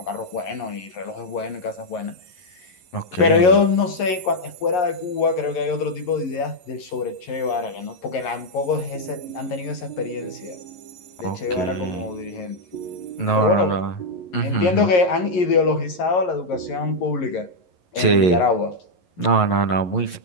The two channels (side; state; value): right; late; 11 ms